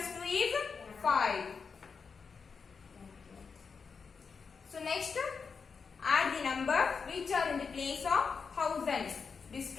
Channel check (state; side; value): quieter; right; 5.4 dB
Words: 2 is 5. So next, add the numbers which are in the place of thousands. This